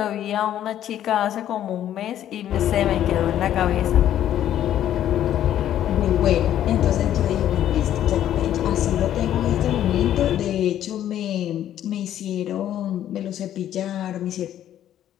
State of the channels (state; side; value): quieter; right; 11.4 dB